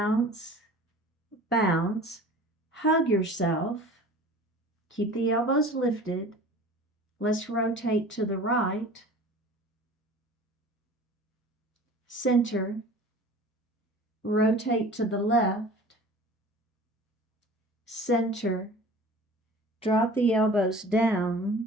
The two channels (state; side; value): normal; both; correlation 0.42